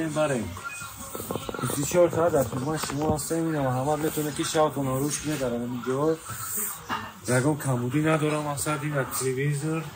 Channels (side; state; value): both; identical; correlation 1.00